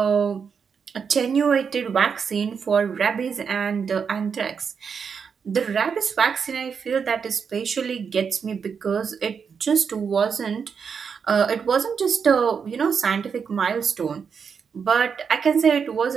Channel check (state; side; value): quieter; left; 6.3 dB